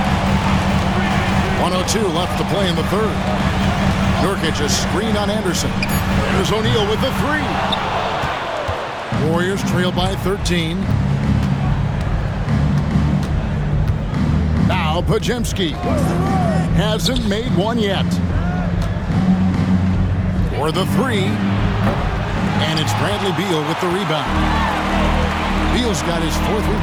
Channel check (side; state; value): both; identical; correlation 1.00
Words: 1:02 left to play in the third. Nurkic a screen on Anderson. There's O'Neal with the 3. Warriors trail by 13. Now Podziemski hasn't made one yet. For the 3. And it's Bradley Beal with the rebound. Beal's got his 4th